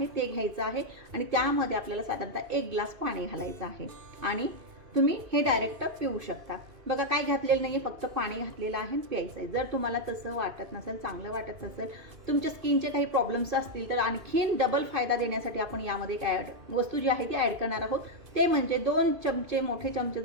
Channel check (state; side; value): late; left; 2.5 ms